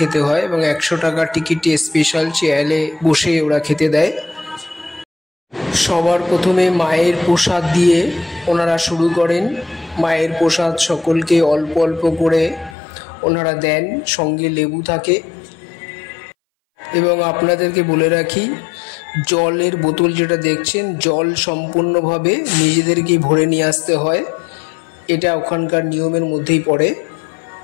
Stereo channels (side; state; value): right; drops out; at 12.8 s